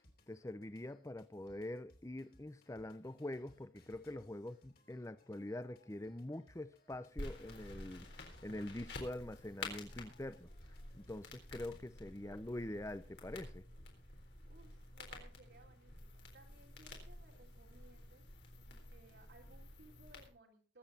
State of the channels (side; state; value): both; normal; correlation 0.79